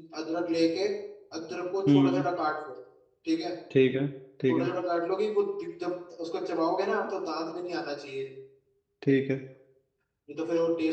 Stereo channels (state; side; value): identical; both; correlation 1.00